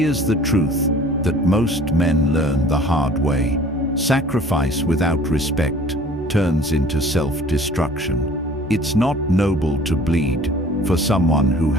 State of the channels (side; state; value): both; normal; correlation 0.50